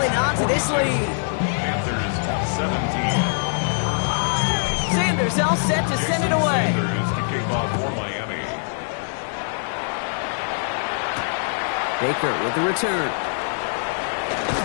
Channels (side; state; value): right; silent; digital silence